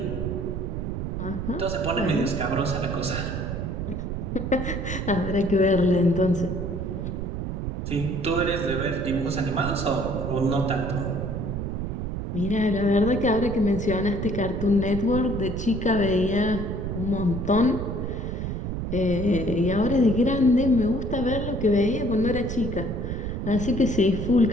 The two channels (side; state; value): right; noise; rumble, 4 dB below the sound